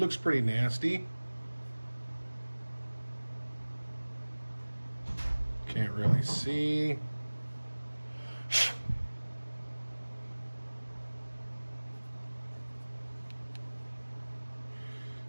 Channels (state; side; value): inverted; both; correlation -1.00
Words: pretty nasty. Can't really see.